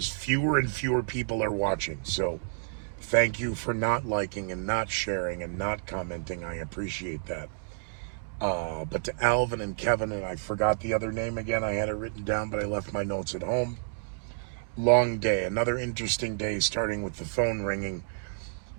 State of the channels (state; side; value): silent; left; digital silence